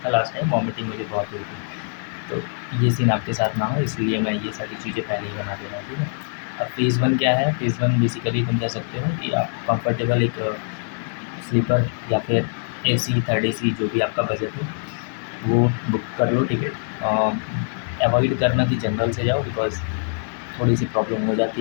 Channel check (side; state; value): right; silent; digital silence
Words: लास्ट टाइम, वॉमिटिंग मुझे बहुत हुई थी, तो ये सीन आपके साथ ना हो, इसलिए मैं ये सारी चीज़ें पहले ही बना दे रहा हूँ, ठीक है। अब फ़ेज़ 1 क्या है, फ़ेज़ 1 बेसिकली तुम कह सकते हो कि आप कंफर्टेबल एक स्लीपर या फिर AC, थर्ड AC, जो भी आपका बजट हो वो बुक कर लो टिकट। अवॉइड करना कि जनरल से जाओ, बिकॉज़ थोड़ी सी प्रॉब्लम हो